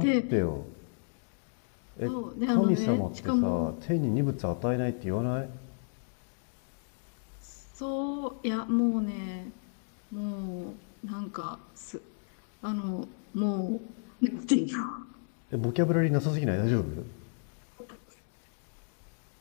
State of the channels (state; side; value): silent; right; digital silence